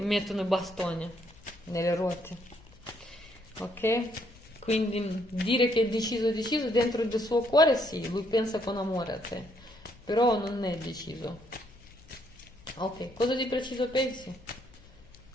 mettono i bastoni nelle ruote, ok? Quindi dire che è deciso dentro del suo cuore, sì, lui pensa con amore a te, però non è deciso. Ok, cosa di preciso pensi?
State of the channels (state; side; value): noise; left; hum, 25 dB below the sound